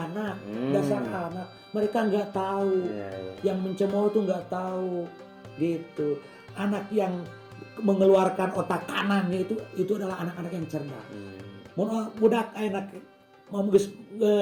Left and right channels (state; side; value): identical; both; correlation 1.00